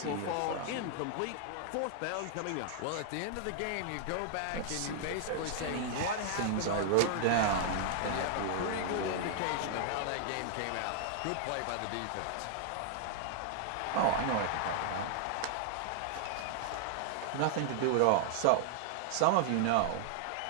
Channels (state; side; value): different; both; correlation 0.00